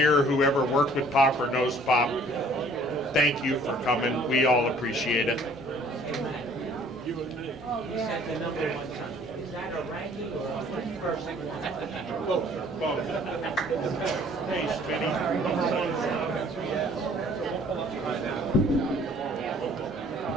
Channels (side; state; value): both; normal; correlation 0.56